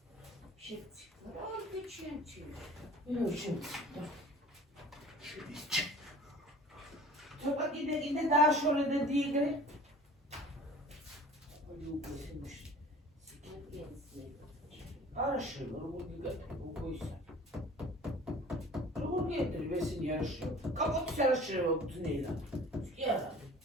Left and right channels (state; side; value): normal; both; correlation 0.44